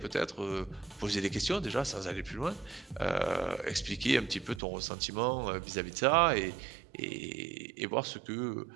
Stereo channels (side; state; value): left; drops out; at 4.6 s